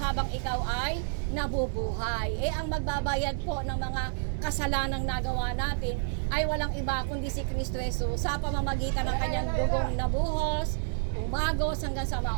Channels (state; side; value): silent; left; digital silence